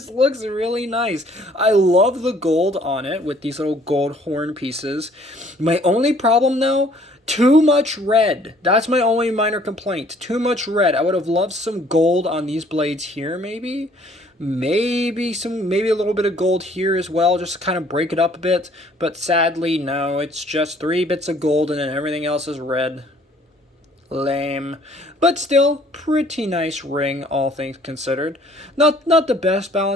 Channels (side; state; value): both; normal; correlation 0.59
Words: looks really nice. I love the gold on it with these little gold horn pieces. My only problem, though, too much red. That's my only minor complaint. Too much red. I would have loved some gold on these blades here, maybe. Maybe a little bit of gold here as well, just to kind of break it up a bit. But sadly, no, it's just 3 bits of gold and then everything else is red. Lame. But still, pretty nice ring, all things considered. Not the best